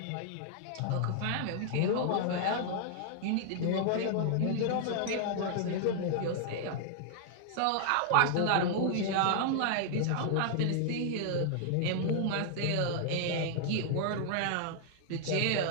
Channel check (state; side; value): different; both; correlation -0.01